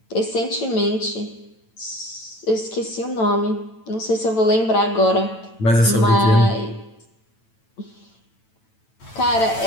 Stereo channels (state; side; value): late; right; 9.0 ms